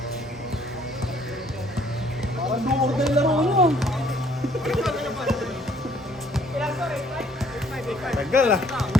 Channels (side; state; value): both; normal; correlation 0.61